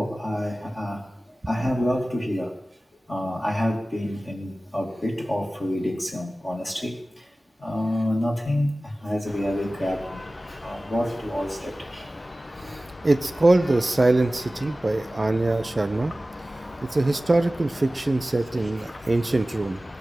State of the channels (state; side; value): normal; both; correlation 0.97